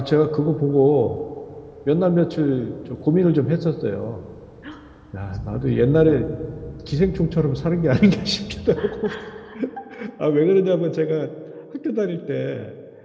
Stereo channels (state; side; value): identical; both; correlation 1.00